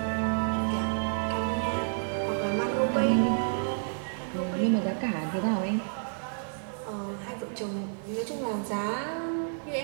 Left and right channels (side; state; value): left; silent; digital silence